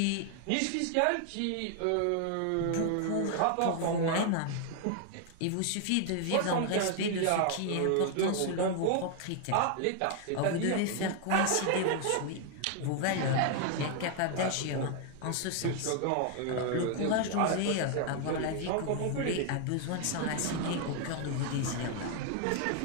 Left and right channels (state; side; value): different; both; correlation 0.00